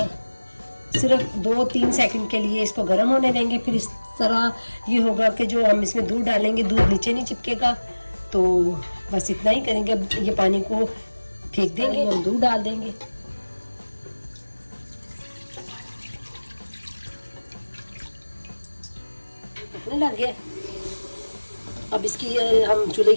सिर्फ 2-3 सेकंड के लिए इसको गर्म होने देंगे। फिर इस तरह ये होगा कि जो हम इसमें दूध डालेंगे दूध नीचे नहीं चिपकेगा, तो बस इतना ही करेंगे। अब ये पानी को फेंक देंगे, हम दूध डाल देंगे। पकने लग गया। अब इसकी हम चूल्हे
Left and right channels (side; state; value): both; inverted; correlation -1.00